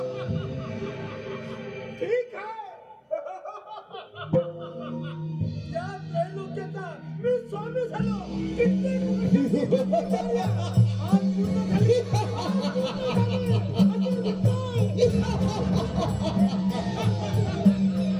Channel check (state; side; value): identical; both; correlation 1.00